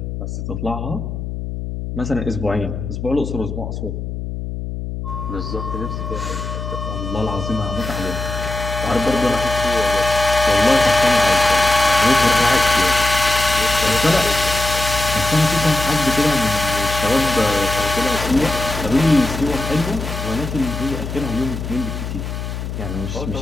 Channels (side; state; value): left; noise; hum, 6 dB below the sound